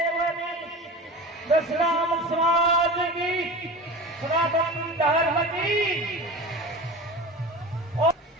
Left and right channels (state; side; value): normal; both; correlation 0.32